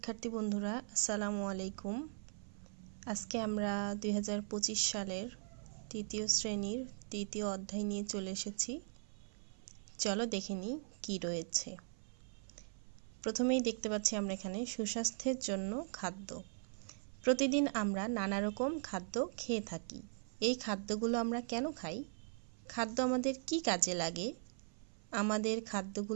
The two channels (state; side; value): silent; left; 51 dB below the other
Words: বন্ধুরা, আসসালামু আলাইকুম। আজকে আমরা 2025 সালের তৃতীয় শ্রেণীর তৃতীয় অধ্যায় নিয়ে চলে এসেছি। চলো দেখে নিই কী রয়েছে। প্রথমেই দেখতে পাচ্ছি আমরা এখানে সুস্বাস্থ্যের জন্য খাদ্য। প্রতিদিন আমরা নানা রকম খাদ্য খেয়ে থাকি। এই খাদ্যগুলো আমরা কেন খাই? খাদ্য আমাদের কি কাজে লাগে? আমাদের